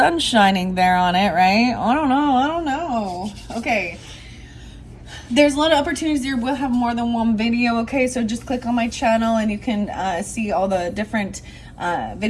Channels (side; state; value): both; identical; correlation 1.00